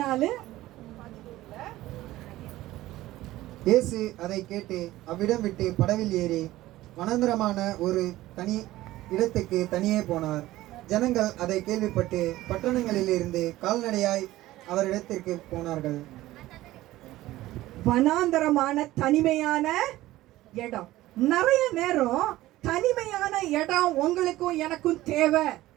இயேசு அதை கேட்டு அவ்விடம் விட்டு படவில் ஏறி வனாந்தரமான ஒரு தனி இடத்துக்கு தனியே போனார். ஜனங்கள் அதை கேள்விப்பட்டு பட்டணங்களில் இருந்து கால்நடையாய் அவரிடத்திற்கு போனார்கள். வனாந்தரமான தனிமையான இடம். நிறைய நேரம் தனிமையான இடம் உங்களுக்கும் எனக்கும் தேவை.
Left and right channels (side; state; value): left; quieter; 16.4 dB